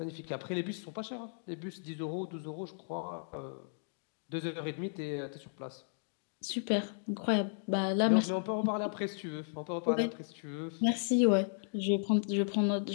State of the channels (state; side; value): silent; right; digital silence